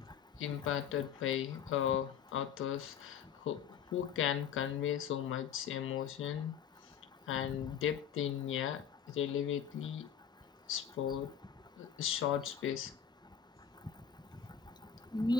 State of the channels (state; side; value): quieter; right; 8.1 dB